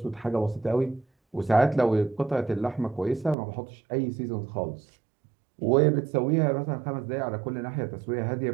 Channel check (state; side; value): drops out; left; at 3.4 s